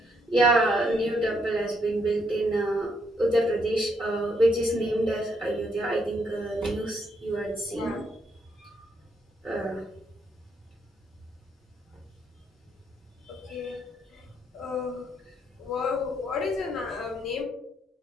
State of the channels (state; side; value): normal; both; correlation 0.74